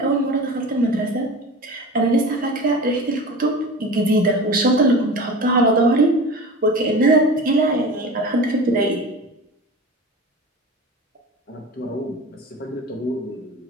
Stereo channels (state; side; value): normal; both; correlation 0.33